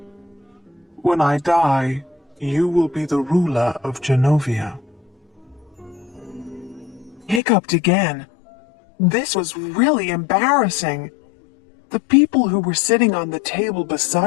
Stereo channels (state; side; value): drops out; right; at 7.4 s